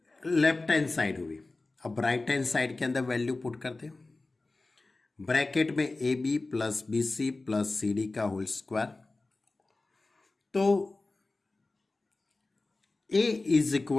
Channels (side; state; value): right; quieter; 3.2 dB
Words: लेफ्ट हैंड साइड हुई। अब राइट हैंड साइड के अंदर वैल्यू पुट करते हैं। ब्रैकेट में A B plus B C plus C D का होल स्क्वायर, तो ए इज